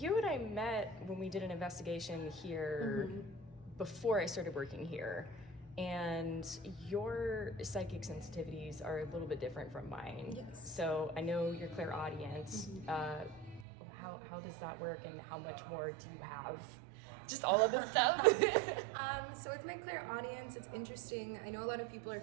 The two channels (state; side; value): drops out; left; at 13.7 s